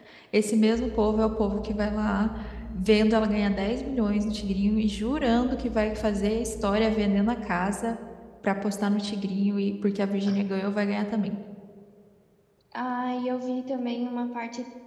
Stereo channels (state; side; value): identical; both; correlation 1.00